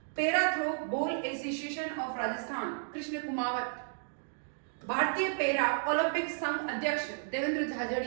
Para throw ball association of Rajasthan Krishna Kumawat. भारतीय पेरा ओलंपिक संघ अध्यक्ष देवेंद्र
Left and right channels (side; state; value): left; silent; digital silence